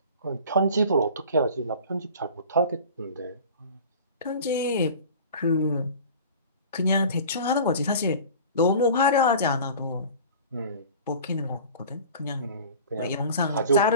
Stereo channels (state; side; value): inverted; both; correlation -0.40